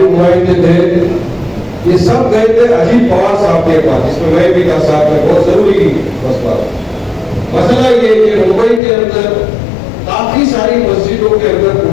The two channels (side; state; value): right; drops out; at 8.8 s